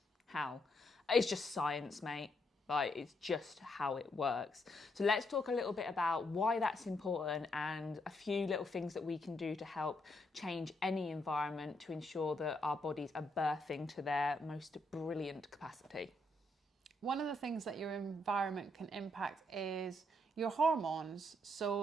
how? It's just science, mate. Like, it's just how it works. So let's talk a little bit about why that's important and a few little things that we can do to help change any environment to ensure that our bodies are birthing to their most brilliant capacity. One of the things that your environment can impact is your hormones.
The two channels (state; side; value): normal; both; correlation 0.76